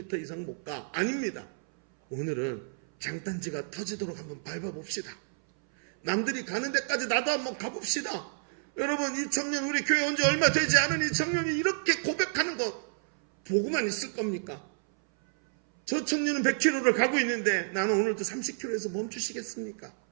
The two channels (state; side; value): silent; left; 58 dB below the other